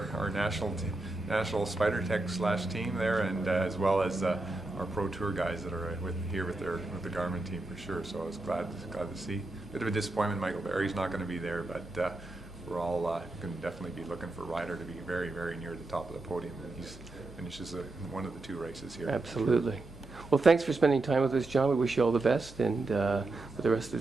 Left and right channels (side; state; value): left; quieter; 3.1 dB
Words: our national Spider Tech / team there, and as well as our Pro Tour guys that are with the Garmin team for sure. So I was glad to see. Bit of a disappointment, Michael Barry's not going to be there, but we're all going to definitely be looking for Ryder to be very near the top of the podium when he finishes one of the two races here. Absolutely. Well, thanks for spending time with us, John. We wish you all the best, and for the rest